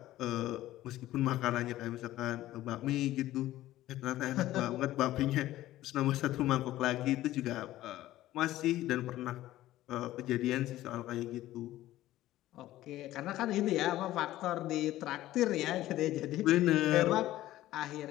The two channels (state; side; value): quieter; right; 15.0 dB